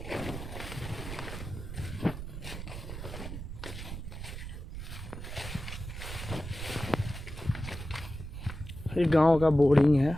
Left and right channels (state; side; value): noise; right; rumble, 8 dB below the sound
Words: ये गांव का बोरिंग है,